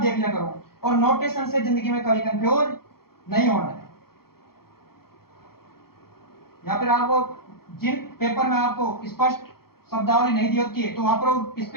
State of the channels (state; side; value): late; right; 0.94 ms